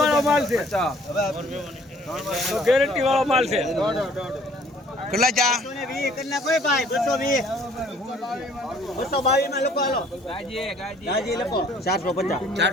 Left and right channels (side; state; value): both; normal; correlation 0.57